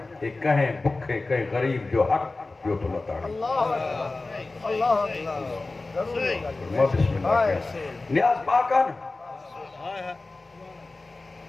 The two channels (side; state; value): right; quieter; 3.4 dB